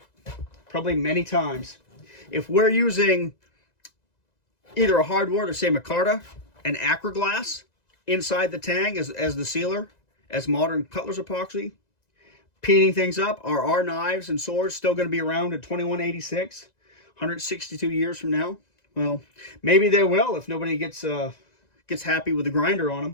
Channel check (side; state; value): right; late; 1.9 ms